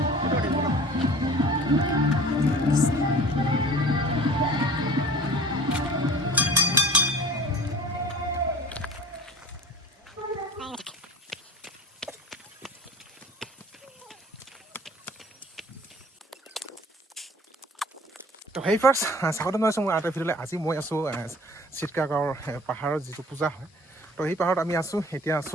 তো হেই ফাৰ্ষ্ট স্বাগতম জনাইছোঁ মোৰ এটা ভিডিঅ'লৈ। আজি মই আছোঁ চিটকাগাঁৱৰ পাহাৰত যিটো পূজা হয়। তো সেই পাহাৰত আমি আছোঁ, এতিয়া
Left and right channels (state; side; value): normal; both; correlation 0.45